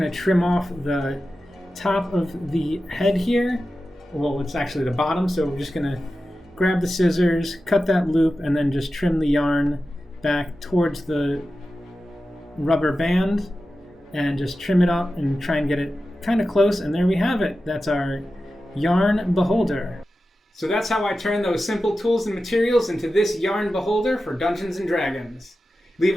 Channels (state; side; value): normal; both; correlation 0.93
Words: to trim off the top of the head here. Well, it's actually the bottom, so we're just going to grab the scissors, cut that loop, and then just trim the yarn back towards the rubber band and just trim it up and try and get it kind of close, and there we have it. That's our yarn beholder. So that's how I turn those simple tools and materials into this yarn beholder for Dungeons & Dragons. Leave